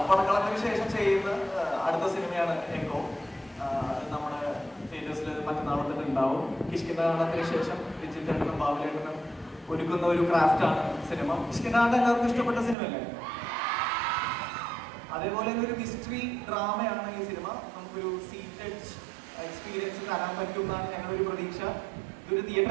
പടക്കളത്തിന് ശേഷം ചെയ്യുന്ന അടുത്ത സിനിമയാണ് എക്കോ. നമ്മുടെ തിയേറ്റേഴ്സിൽ മറ്റന്നാൾ തന്നെ ഉണ്ടാവും. കിഷ്കിന്താണ്ടത്തിന് ശേഷം വിജിത്തേട്ടനും ബാബുലേട്ടനും ഒരുക്കുന്ന ഒരു ക്രാഫ്റ്റാണ് സിനിമ. കിഷ്കിന്താണ്ട് എല്ലാവർക്കും ഇഷ്ടപ്പെട്ട സിനിമയല്ലേ? അതേപോലെ ഒരു മിസ്റ്ററി ഡ്രാമയാണ് ഈ സിനിമ. നമുക്കൊരു സീറ്റഡ് എക്സ്പീരിയൻസ് തരാൻ പറ്റും എന്നാണ് ഞങ്ങളുടെ ഒരു പ്രതീക്ഷ. ഇതൊരു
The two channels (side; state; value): left; drops out; at 12.8 s